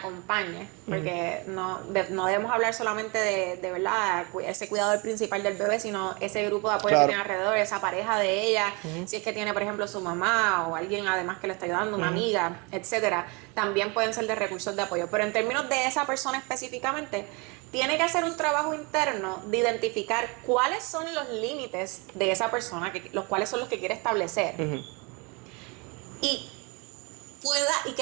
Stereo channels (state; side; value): quieter; left; 29.6 dB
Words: porque no debemos hablar solamente de verdad ese cuidador principal del bebé, sino ese grupo de apoyo que tiene alrededor, esa pareja de ella, si es que tiene por ejemplo su mamá o alguien además que le está ayudando, una amiga, etcétera, también pueden ser de recursos de apoyo. Pero en términos de esa persona específicamente, tiene que hacer un trabajo interno de identificar cuáles son los límites de esa persona, los cuáles son los que quiere establecer. Y